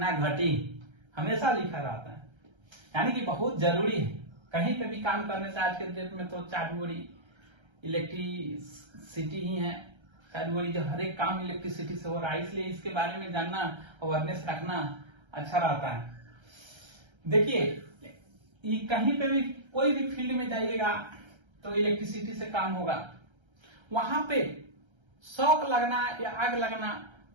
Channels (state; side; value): late; left; 1.3 ms